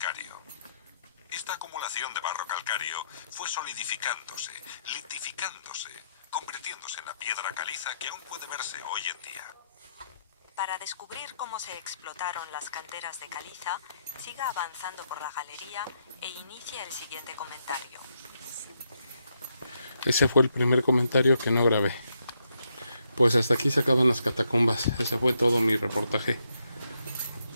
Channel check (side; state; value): both; inverted; correlation -0.78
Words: Esta acumulación de barro calcáreo fue solidificándose, litificándose, convirtiéndose en la piedra caliza que aún puede verse hoy en día. Para descubrir cómo se explotaron las canteras de caliza, siga avanzando por la galería e inicie el siguiente comentario. Ese fue el primer comentario que no grabé. Pues hasta aquí se acaban las catacumbas. Ese fue todo mi reportaje.